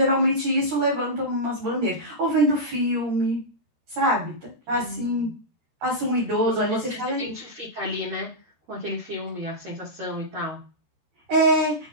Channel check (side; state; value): left; late; 13 ms